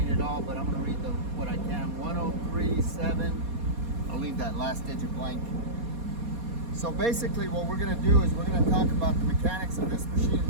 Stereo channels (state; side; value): late; left; 4.2 ms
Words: but I'm going to read what I can. 1037. I'll leave that last digit blank. So basically what we're going to do is we're going to talk about the mechanics of this machine in